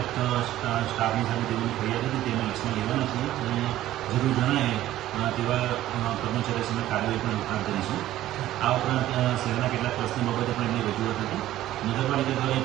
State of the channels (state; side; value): quieter; left; 14.1 dB